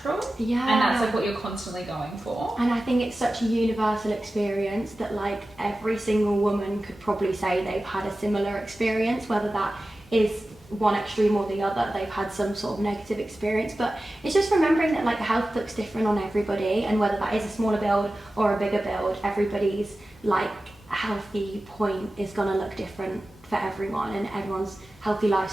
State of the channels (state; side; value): normal; both; correlation 0.95